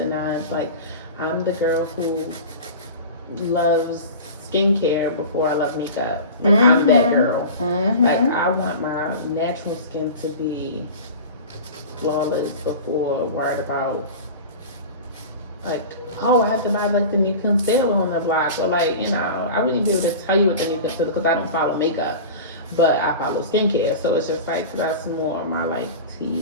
nines. Like I'm the girl who loves skincare before I love makeup. Like I'm that girl. Like I want my natural skin to be flawless before worried about like, oh, I have to buy like the new concealer on the block, or like, you know, I wouldn't be able to tell you what the new concealer, because I don't follow makeup, but I follow skincare, so it's just like that's more of my like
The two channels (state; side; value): inverted; both; correlation -0.33